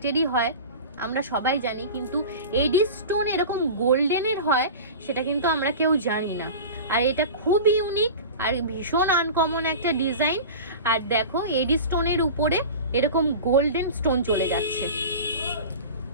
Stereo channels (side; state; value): both; inverted; correlation -0.33